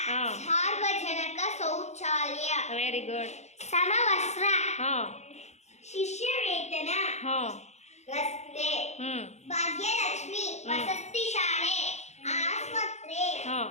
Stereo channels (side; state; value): right; late; 0.33 ms